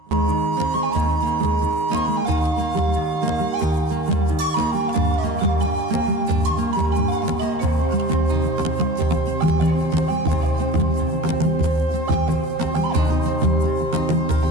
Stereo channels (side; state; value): left; late; 13 ms